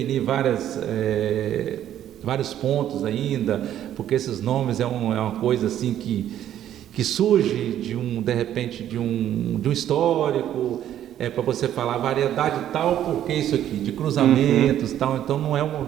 vários pontos ainda, porque esses nomes é uma coisa assim que surge de repente de um histórico, para você falar variedade tal, porque isso aqui, de cruzamentos tal, então não é um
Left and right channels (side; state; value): left; quieter; 11.2 dB